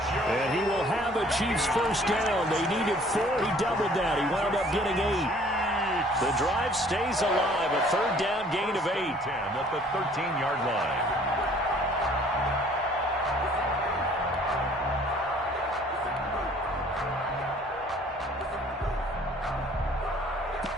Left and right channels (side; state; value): both; normal; correlation 0.55